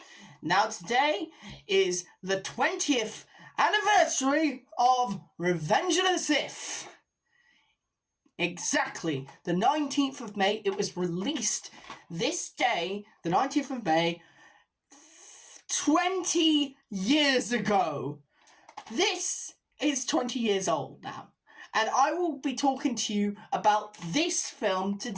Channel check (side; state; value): both; identical; correlation 1.00